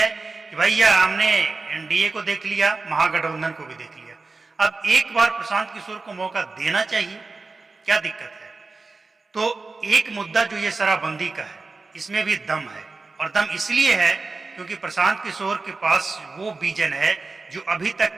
कि भैया हमने एनडीए को देख लिया, महागठबंधन को भी देख लिया, अब एक बार प्रशांत किशोर को मौका देना चाहिए, क्या दिक्कत है। तो एक मुद्दा जो ये शराबबंदी का है, इसमें भी दम है, और दम इसलिए है क्योंकि प्रशांत किशोर के पास वो विजन है जो अभी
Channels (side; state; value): left; quieter; 3.8 dB